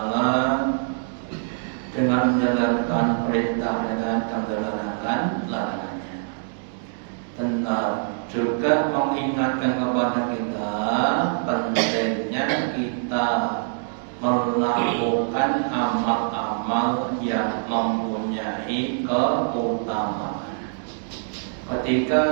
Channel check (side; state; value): left; silent; digital silence